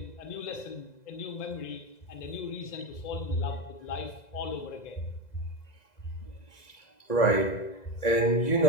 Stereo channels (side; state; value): right; late; 2.0 ms